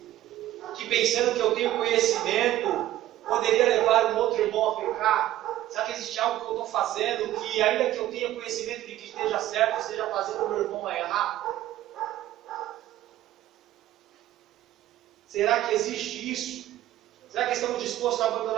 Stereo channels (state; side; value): quieter; left; 14.0 dB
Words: que pensando que eu tenho conhecimento, poderia levar um outro irmão a pecar? Será que existe algo que eu estou fazendo, que ainda que eu tenha conhecimento de que esteja certo, esteja fazendo o meu irmão a errar? Será que existe isso? Será que estamos dispostos a